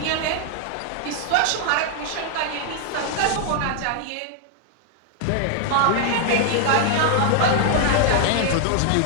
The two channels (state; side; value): different; both; correlation 0.00